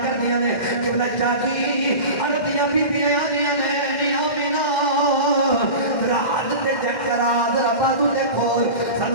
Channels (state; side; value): late; right; 1.7 ms